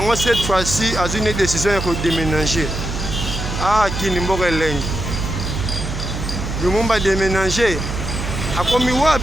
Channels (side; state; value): right; noise; hum, 5 dB below the sound